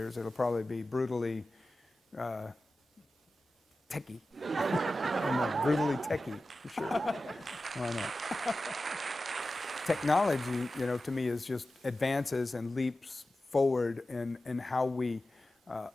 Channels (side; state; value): both; normal; correlation 0.94